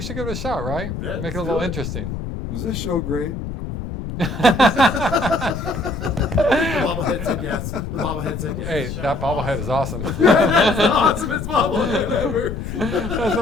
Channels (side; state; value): left; noise; rumble, 6 dB below the sound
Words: should give it a shot, right? Yeah, Make it a let's little do it. interesting. Was this show great? The bobblehead said yes. The bobblehead said yes. Hey, that bobblehead is awesome. That's the awesomest bobblehead ever. That's the